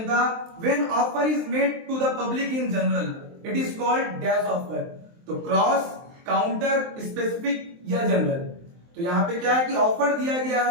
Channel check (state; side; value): late; left; 23 ms